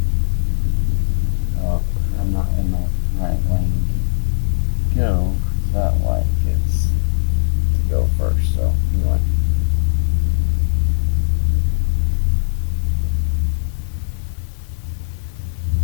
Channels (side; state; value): right; silent; digital silence